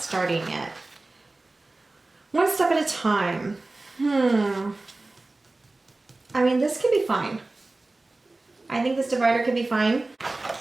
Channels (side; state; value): left; quieter; 3.1 dB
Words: yet. One step at a time. I mean, this could be fine. I think this divider could be fine.